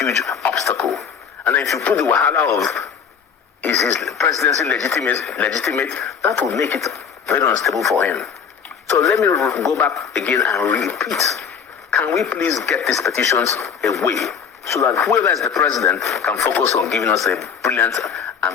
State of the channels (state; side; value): quieter; right; 6.9 dB